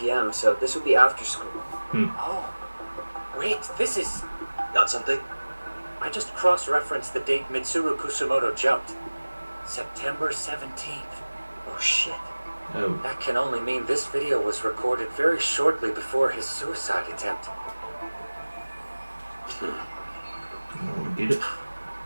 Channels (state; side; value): inverted; both; correlation -1.00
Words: so this would be after school. Oh, wait, this is... Got something? I just cross-referenced the date Mitsuru Kusamoto jumped. September 17th. Oh shit. Oh. That can only mean this video was recorded very shortly before his suicide attempt. Oh, did it?